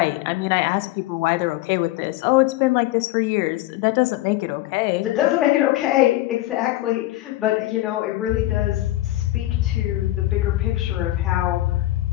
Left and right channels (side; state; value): right; quieter; 16.4 dB